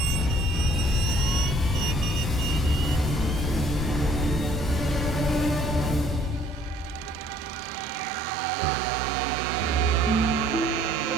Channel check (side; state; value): both; normal; correlation 0.59